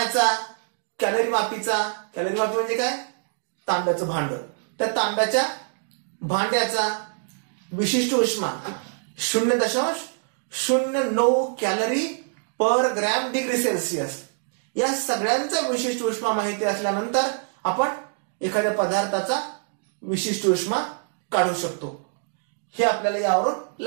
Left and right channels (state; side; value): silent; left; digital silence